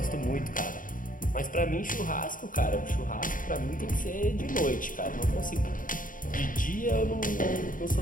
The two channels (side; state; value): right; late; 0.39 ms